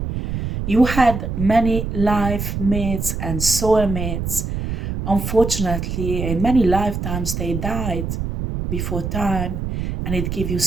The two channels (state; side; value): noise; right; rumble, 4 dB below the sound